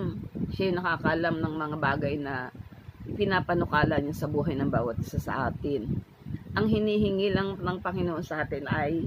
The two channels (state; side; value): identical; both; correlation 1.00